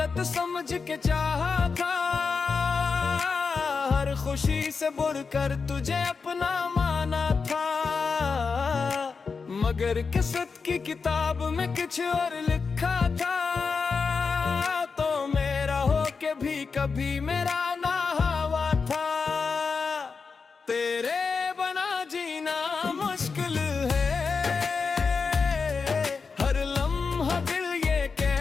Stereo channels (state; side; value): quieter; right; 5.0 dB